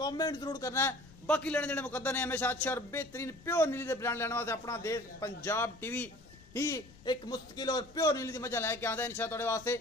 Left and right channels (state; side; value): noise; left; rumble, 22 dB below the sound